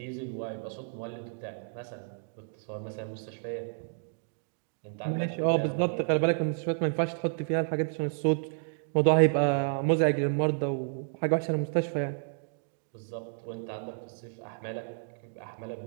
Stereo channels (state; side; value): silent; left; digital silence